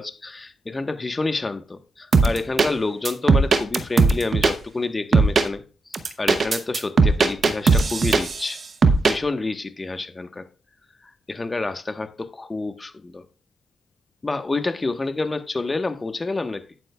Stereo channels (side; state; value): both; normal; correlation 0.86